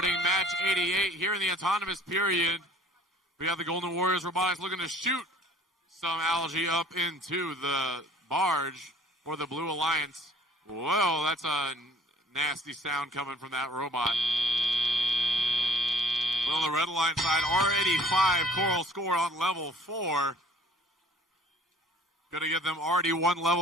match 88 here in the autonomous period. We have the Golden Warriors Robotics looking to shoot some algae up into the barge for the Blue Alliance. Whoa, that's a nasty sound coming from that robot. Well, the Red Alliance side already 5 coral score on level 4. Going to give them already 1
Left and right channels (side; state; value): both; normal; correlation 0.53